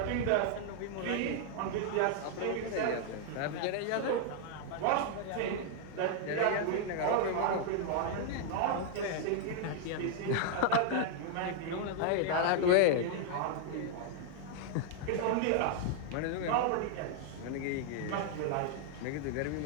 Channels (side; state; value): both; different; correlation 0.00